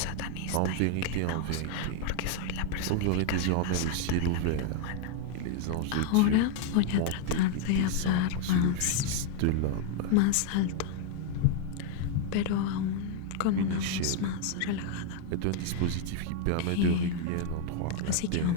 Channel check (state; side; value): different; both; correlation 0.00